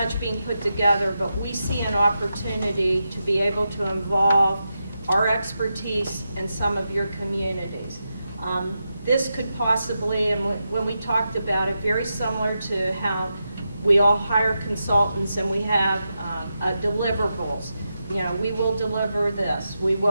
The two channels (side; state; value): both; inverted; correlation -0.88